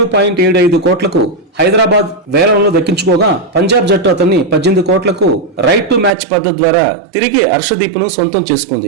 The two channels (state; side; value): drops out; left; at 6.1 s